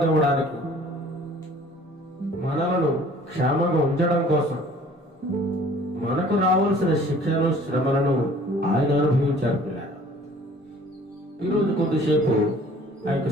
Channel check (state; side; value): normal; both; correlation 0.52